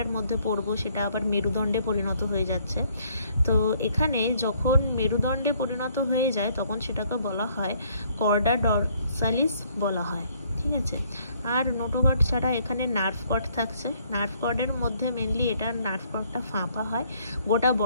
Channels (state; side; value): inverted; both; correlation -0.65